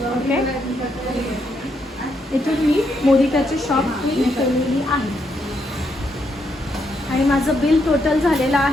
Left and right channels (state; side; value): normal; both; correlation 0.78